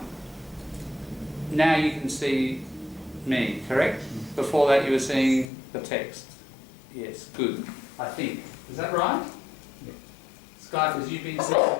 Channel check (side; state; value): right; drops out; at 5.5 s